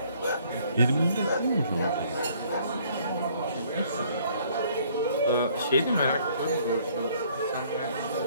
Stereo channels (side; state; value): both; inverted; correlation -0.61